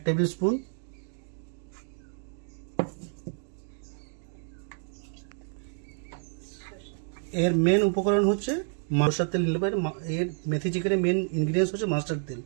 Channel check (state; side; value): silent; left; 58 dB below the other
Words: টেবিল স্পুন, এর মেন উপকরণ হচ্ছে মাস্টার্ড তেল নিলে পারে। এর মেথি চিকেনের মেন ইনগ্রিডিয়েন্টস হচ্ছে মাস্টার্ড তেল,